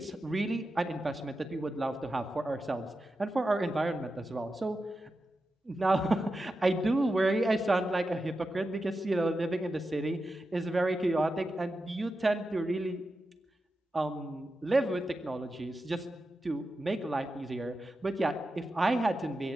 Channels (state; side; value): normal; both; correlation 0.90